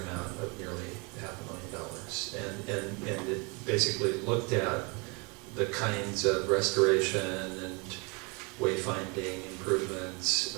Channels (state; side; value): quieter; left; 30.5 dB